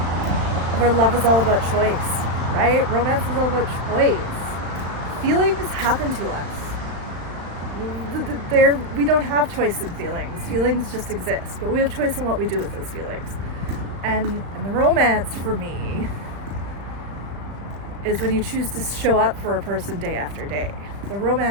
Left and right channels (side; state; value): left; late; 35 ms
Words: love is all about choice, right? Romance is all about choice. Feelings happen to us. We don't have choice in feelings. Feelings just exist, but we have choice in what we do with those feelings. And the romance for me is when you choose to show up for a person day after day. The